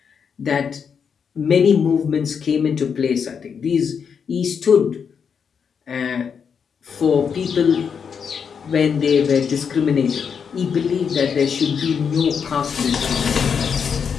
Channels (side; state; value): right; quieter; 6.7 dB